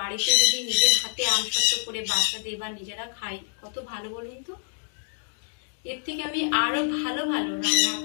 যদি নিজের হাতে আমসত্ত্ব করে বাচ্চাদের বা নিজেরা খাই কত ভালো বলুন তো। এর থেকে আমি আরো ভালো ভালো রান্না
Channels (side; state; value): right; silent; digital silence